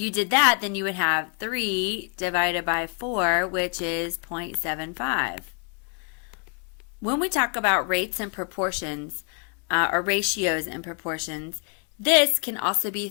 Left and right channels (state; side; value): quieter; right; 38.7 dB